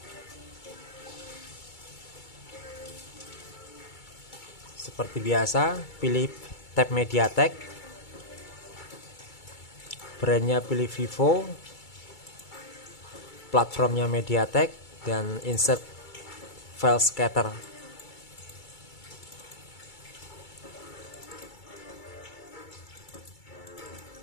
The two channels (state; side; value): late; right; 2.3 ms